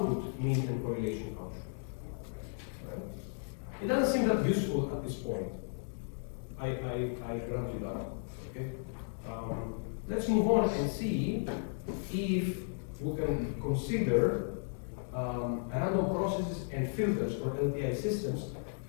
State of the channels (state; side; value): silent; right; digital silence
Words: mean and correlation function. It doesn't seem that useful at this point. I grant you that. Okay. Let's move on and see if we can consider random processes and filters or LTI systems